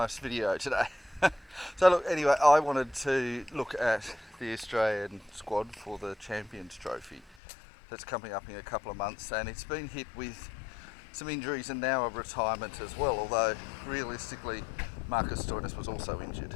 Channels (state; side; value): drops out; right; at 7.4 s